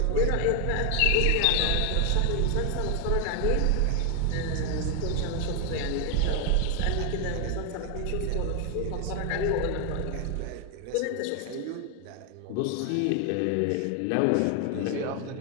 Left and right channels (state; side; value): different; both; correlation 0.00